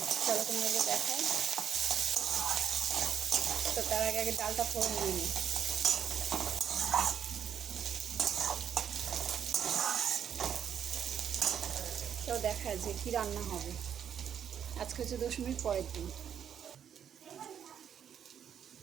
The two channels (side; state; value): left; quieter; 8.7 dB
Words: চলো তোমাকে দেখাই। তো তার আগে আগে ডালটা ফোড়ন দিয়ে নিই। তো দেখা যে কী রান্না হবে। আজকে হচ্ছে দশমীর পরের দিন।